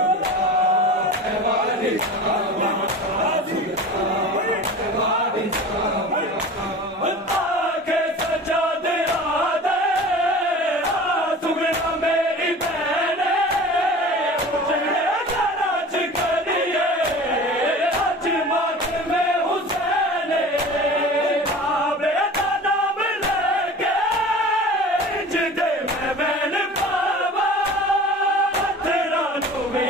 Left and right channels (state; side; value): normal; both; correlation 0.38